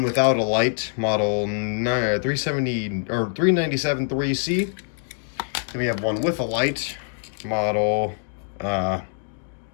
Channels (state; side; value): silent; right; digital silence